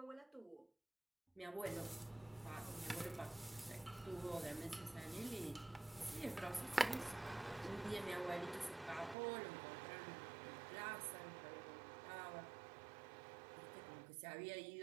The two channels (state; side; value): drops out; left; at 9.2 s